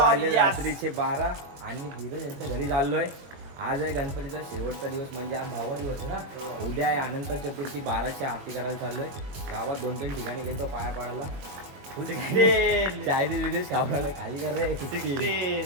रात्रीचे 12 आणि धीरज यांच्या घरी चाललोय. आज आहे गणपतीचा शेवटचा दिवस, म्हणजे आज 10वा दिवस आहे ना. उद्या आहे अनंत चतुर्थी. 12ची आरती करायला चाललोय. गावात 2-3 ठिकाणी गेलो पाया पाडायला. चायनीज विदेश खाऊन आलोय. खाली कर रे.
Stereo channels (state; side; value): late; left; 22 ms